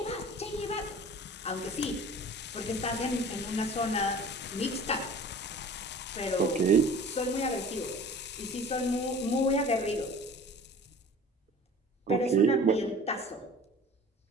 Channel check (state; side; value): normal; both; correlation 0.43